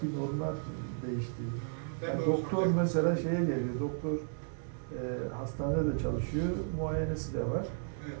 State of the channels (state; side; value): silent; left; digital silence